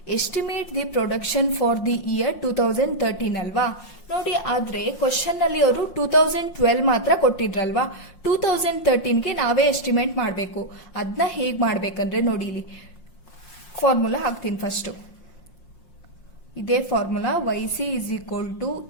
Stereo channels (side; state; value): right; late; 5.6 ms